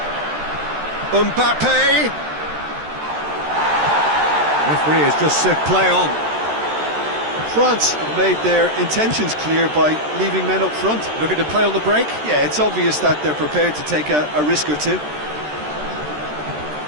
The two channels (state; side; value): late; left; 13 ms